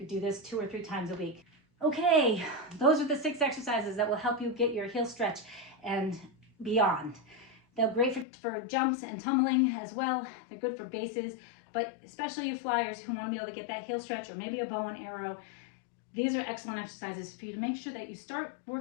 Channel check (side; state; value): right; drops out; at 8.2 s